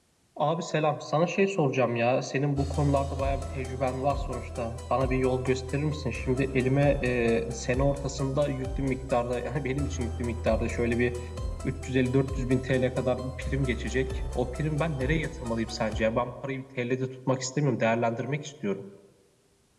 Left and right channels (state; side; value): identical; both; correlation 1.00